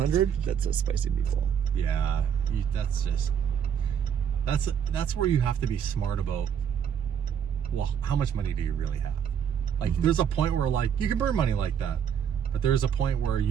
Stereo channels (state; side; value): quieter; left; 8.2 dB